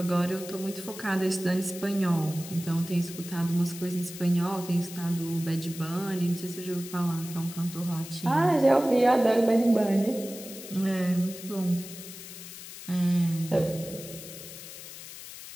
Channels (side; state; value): left; noise; hiss, 13 dB below the sound